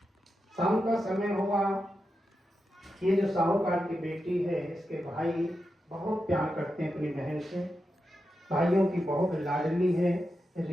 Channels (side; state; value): both; normal; correlation 0.88